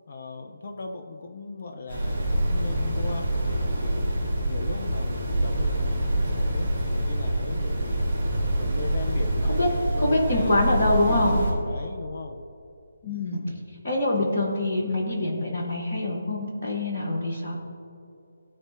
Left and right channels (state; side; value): inverted; both; correlation -0.83